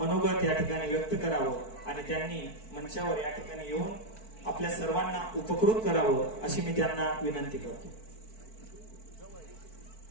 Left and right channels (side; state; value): right; late; 4.5 ms